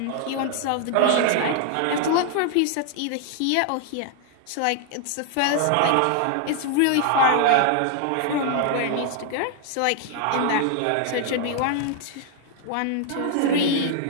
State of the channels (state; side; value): different; both; correlation 0.00